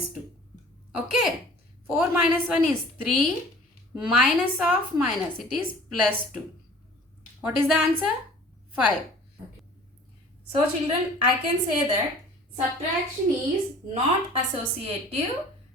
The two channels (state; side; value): normal; both; correlation 0.47